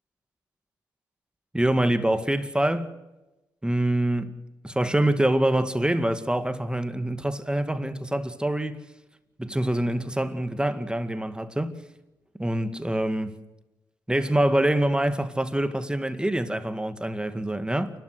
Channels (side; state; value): both; normal; correlation 0.96